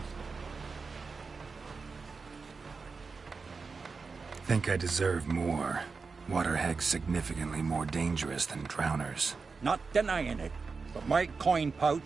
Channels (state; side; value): quieter; left; 4.6 dB